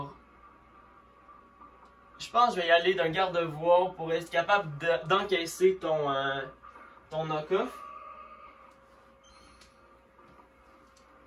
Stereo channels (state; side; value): identical; both; correlation 1.00